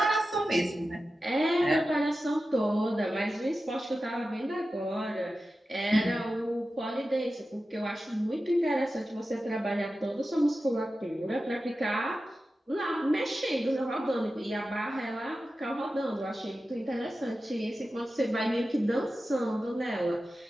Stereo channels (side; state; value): both; normal; correlation 0.93